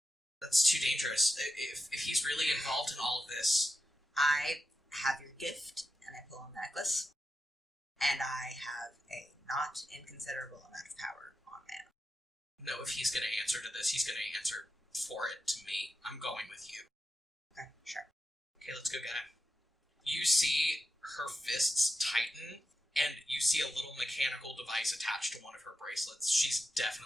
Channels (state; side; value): normal; both; correlation 0.89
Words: That's too dangerous. If he's really involved in all of this... I have your gift, and I pull a necklace, and I have a not inconsiderable amount of power on man. No, if he's going to answer to this, he's going to answer for it to me. I'm going with you. Okay, sure. Okay, let's go get him. You see her fists tighten, and you see a little mechanical device attached to one of her bracelets. She's